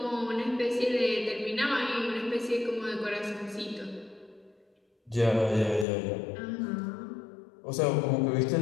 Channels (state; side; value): drops out; right; at 5.9 s